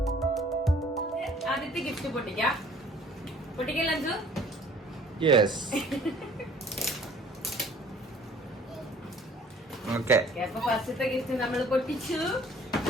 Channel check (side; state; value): both; normal; correlation 0.54